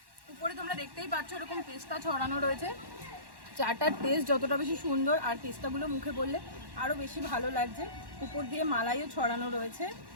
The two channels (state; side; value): late; left; 1.1 ms